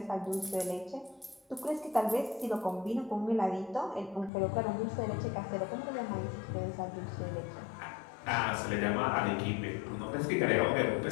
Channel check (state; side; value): drops out; right; at 4.3 s